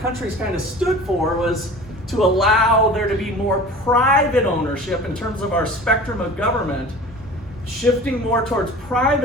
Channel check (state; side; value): normal; both; correlation 0.40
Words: kind of stood for, was to allow there to be more private ownership in terms of our spectrum of government, shifting more towards